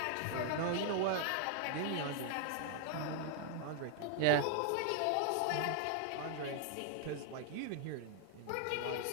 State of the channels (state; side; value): different; both; correlation 0.00